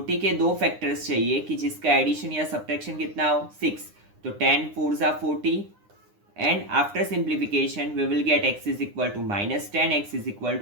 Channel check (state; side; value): late; left; 9.8 ms